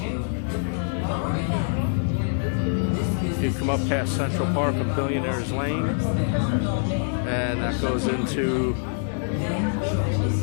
You come up past Central Park and Billionaires Lane, and that goes into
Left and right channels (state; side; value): silent; right; 61 dB below the other